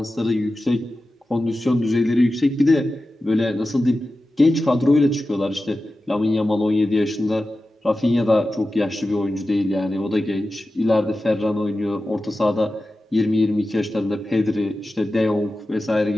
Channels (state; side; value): normal; both; correlation 0.93